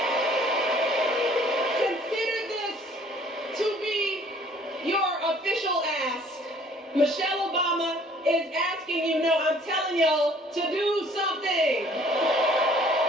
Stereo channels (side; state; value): both; normal; correlation 0.56